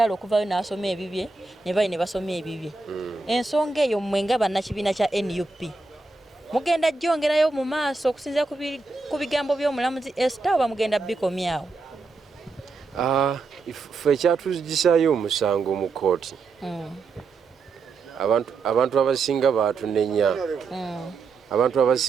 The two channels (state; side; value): quieter; left; 4.0 dB